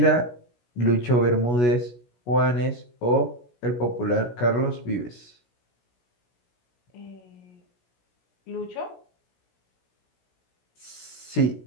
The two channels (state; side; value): late; right; 16 ms